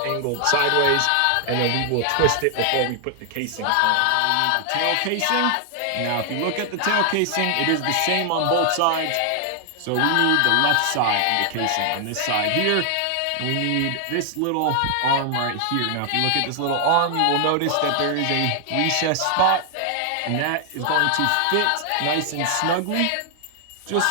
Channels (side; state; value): both; different; correlation 0.00